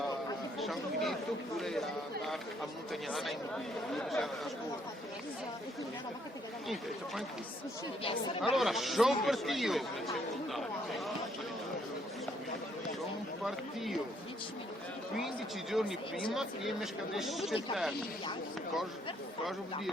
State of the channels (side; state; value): both; normal; correlation 0.69